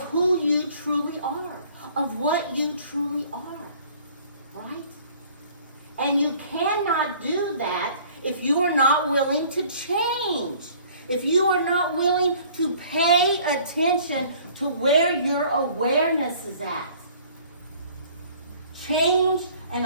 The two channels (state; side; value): inverted; both; correlation -0.53